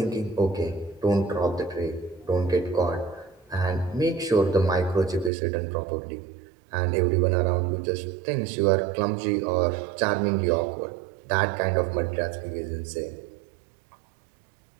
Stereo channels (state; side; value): drops out; left; at 5.3 s